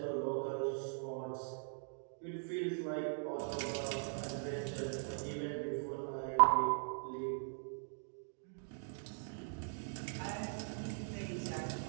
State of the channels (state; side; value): silent; left; digital silence